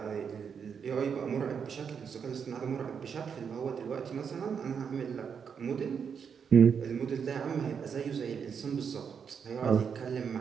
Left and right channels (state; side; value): quieter; left; 6.8 dB